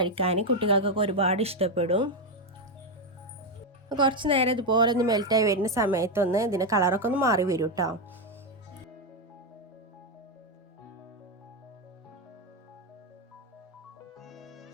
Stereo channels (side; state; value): both; normal; correlation 0.06